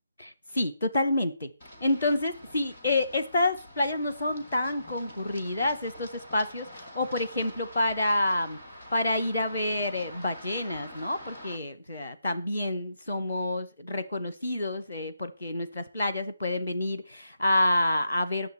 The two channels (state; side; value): inverted; both; correlation -0.80